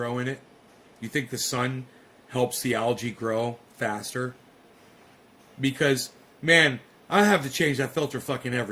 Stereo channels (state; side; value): identical; both; correlation 1.00